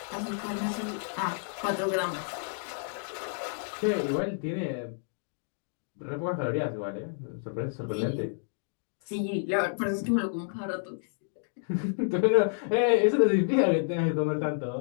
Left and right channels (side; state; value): right; silent; digital silence